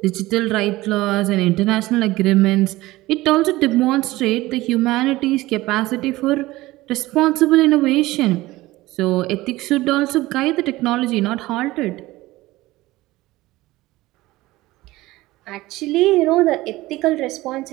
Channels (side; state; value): left; quieter; 18.4 dB